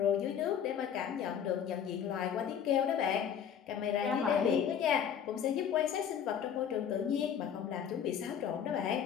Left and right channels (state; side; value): quieter; right; 8.4 dB